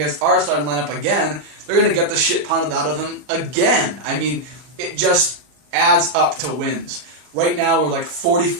our starting lineup again. They're going to get the shit pounded out of them again. It just adds up to wins. Right now we're like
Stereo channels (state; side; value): late; left; 40 ms